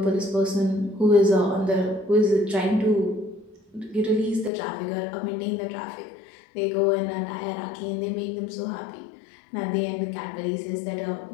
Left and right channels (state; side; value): drops out; right; at 4.5 s